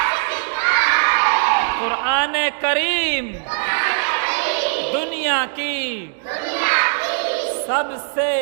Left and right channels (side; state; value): left; silent; digital silence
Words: कुरान करीम दुनिया की सबसे